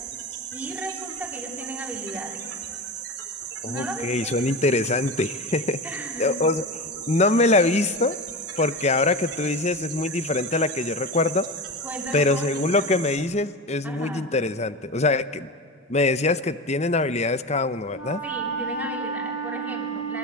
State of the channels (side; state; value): both; normal; correlation 0.24